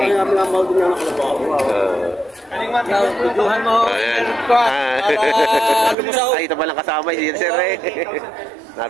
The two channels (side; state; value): left; drops out; at 6.0 s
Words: Tuduhan mo. Ayan. Ay, ito palang kasama si sir eh.